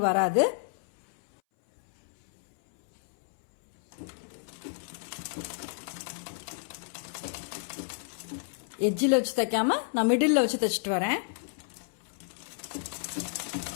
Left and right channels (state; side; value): silent; right; 58 dB below the other